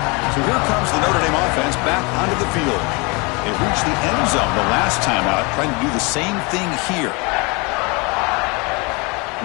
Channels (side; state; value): right; quieter; 28.9 dB